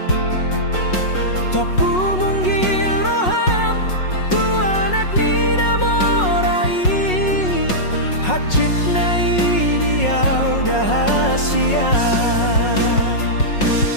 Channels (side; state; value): right; late; 5.5 ms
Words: topu munggil roham tuanak ni namorai, hacit na idiau dahasia.